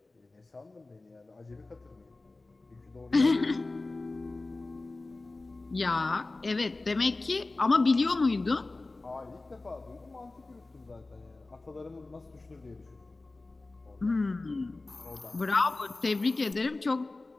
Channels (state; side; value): quieter; right; 3.2 dB